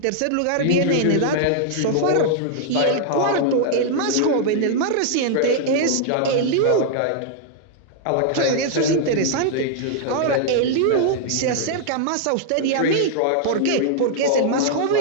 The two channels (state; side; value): different; both; correlation -0.01